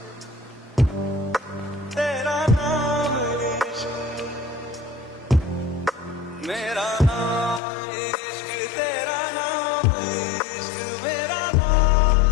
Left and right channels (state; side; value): drops out; right; at 7.6 s